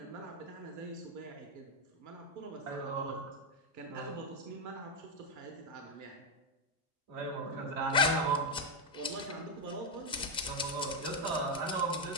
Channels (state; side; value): normal; both; correlation 0.04